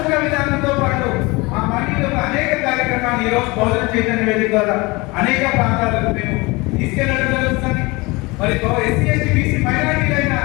విధానంతో పాటు ఆ మానవుడి యొక్క అనేక కార్యక్రమాలు ఈ రోజు బహుజన చైతన్య వేదిక ద్వారా అనేక ప్రాంతాలకు మేము తీసుకెళ్లడం జరుగుతుంది. మరి ఎస్సీ, ఎస్టీ, బీసీ, మైనారిటీలైన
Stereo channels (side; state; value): right; quieter; 24.3 dB